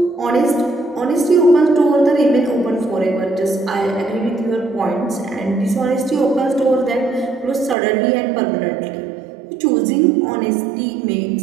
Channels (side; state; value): left; drops out; at 7.8 s